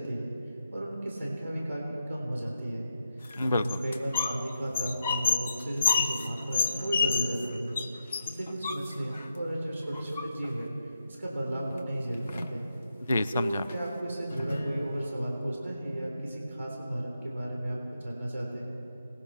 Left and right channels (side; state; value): both; inverted; correlation -0.84